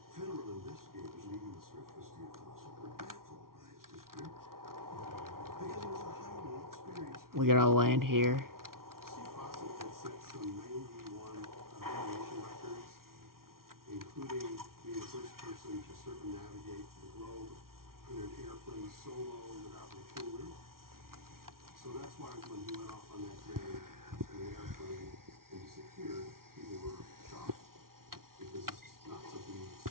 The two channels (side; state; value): left; late; 0.93 ms